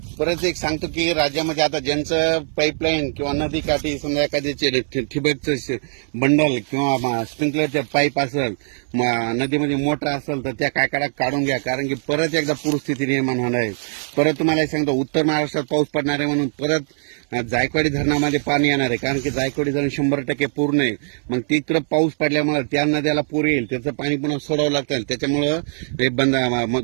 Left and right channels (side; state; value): left; silent; 65 dB below the other